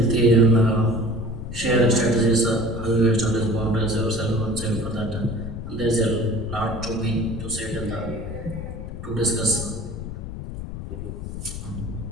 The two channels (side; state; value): left; noise; rumble, 8 dB below the sound